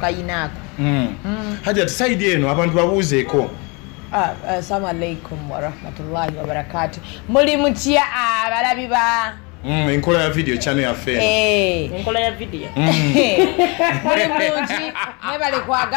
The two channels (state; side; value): quieter; right; 29.8 dB